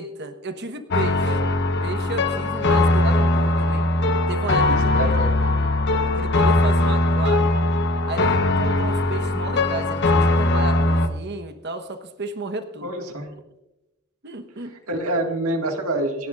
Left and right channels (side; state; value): both; normal; correlation 0.48